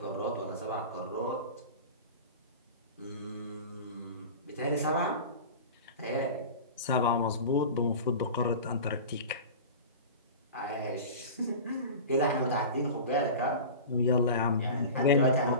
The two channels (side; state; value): both; inverted; correlation -0.33